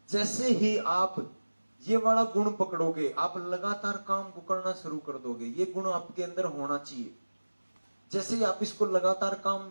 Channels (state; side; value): inverted; both; correlation -1.00